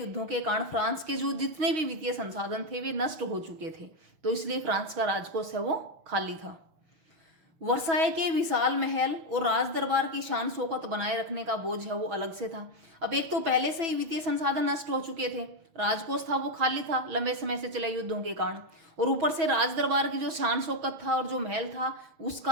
के कारण फ्रांस के जो जितने भी वित्तीय संसाधन थे वे नष्ट हो चुके थे, तो इसलिए फ्रांस का राजकोष है वो खाली था। वर्साय के विशाल महल और राज दरबार की शान शौकत बनाए रखने का बोझ है वो अलग से था। अब एक तो पहले से ही वित्तीय संसाधन नष्ट हो चुके थे, राजकोष था वो खाली था लंबे समय से चले युद्धों के कारण, और ऊपर से राज दरबार की जो शान शौकत था और जो महल था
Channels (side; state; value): left; late; 6.2 ms